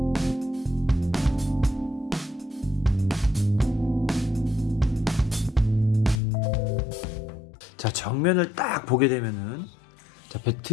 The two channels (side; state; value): right; drops out; at 6.2 s